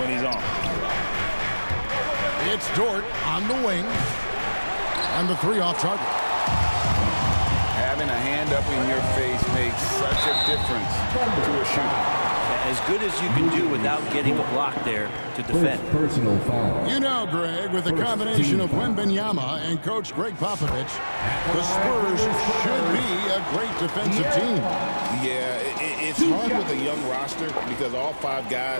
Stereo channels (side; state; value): both; inverted; correlation -1.00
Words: when he's on. It's Dort on the wing. And the 3 off target. Having a hand up in your face makes such a difference to a shooter. As good as you can do without getting a block there to defend. Personal foul. You know, Greg, with the combination of Wembanyama and Coach Greg Popovich, the Spurs should be a great defensive team. Yeah, it's hard with a young roster because all 5